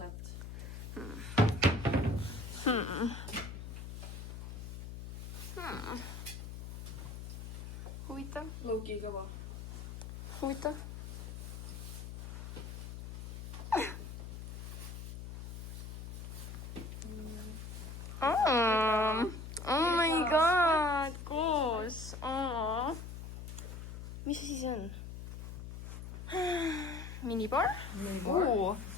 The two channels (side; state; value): left; noise; hum, 8 dB below the sound